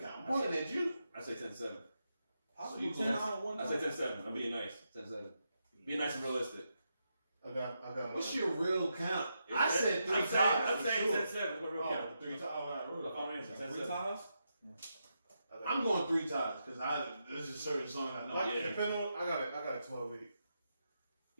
I'm pointing at you. I say 10-7. Possible you 10 on and 1 I say 10-7. I'm being nice. 10-7. Being nice and realistic. I got What's your real count? I said 3 times. I'm saying 10-7. What real Oh, count? 3 times. All right, Look, I'll answer. 3 10-7. times? I'm going 3 times because this is a certain song I know. Like, depending on, I got a 12-8.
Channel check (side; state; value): both; inverted; correlation -0.84